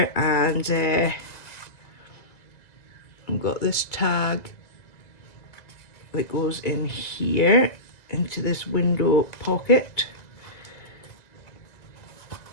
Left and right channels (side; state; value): right; late; 2.0 ms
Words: and I've got this tag that goes in here into this window pocket.